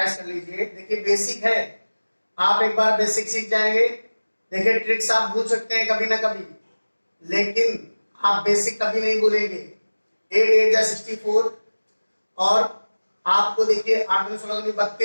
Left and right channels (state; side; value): inverted; both; correlation -1.00